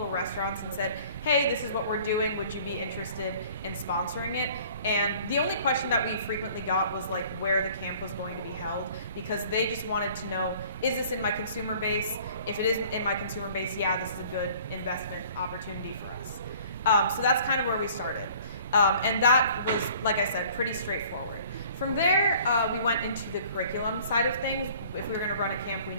restaurants and said, hey, this is what we're doing. Would you be interested in sponsoring it? And the only question that we frequently got was like where the camp was going to be held, because they just wanted to know, is this in my consumer base? If it is in my consumer base, yeah, this is a good investment opportunity for us. So that's kind of where we started. And that was, like I said, pretty straightforward. From there, we went into the curriculum side of things. If we were going to run a camp, we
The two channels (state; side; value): inverted; both; correlation -0.52